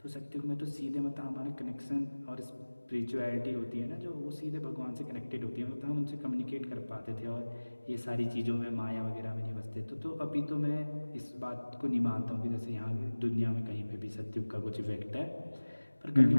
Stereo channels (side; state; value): both; inverted; correlation -1.00